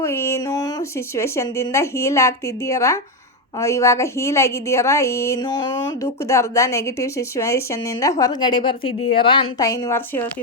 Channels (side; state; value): both; normal; correlation 0.08